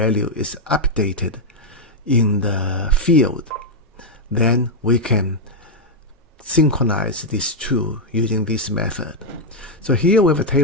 is updated in the field, then we can synchronize these two using this method. So here we have a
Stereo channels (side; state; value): both; normal; correlation -0.01